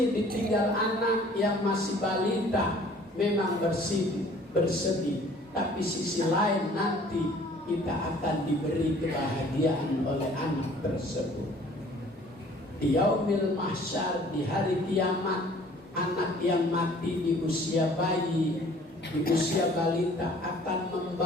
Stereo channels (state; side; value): normal; both; correlation 0.53